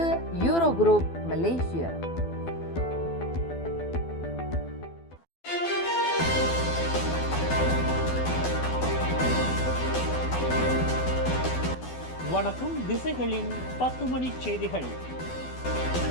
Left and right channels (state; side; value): late; right; 12 ms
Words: யூரோ குரூப் மலேசியா. வணக்கம். திசைகளின் 10 மணி செய்திகள்.